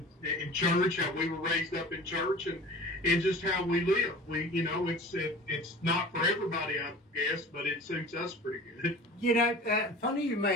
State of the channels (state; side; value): normal; both; correlation 0.40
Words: church, how we were raised up in church, and just how we live. It's not for everybody, I guess, but it suits us pretty good. You know, funny you